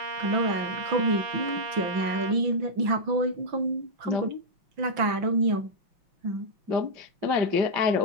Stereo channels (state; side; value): late; left; 5.9 ms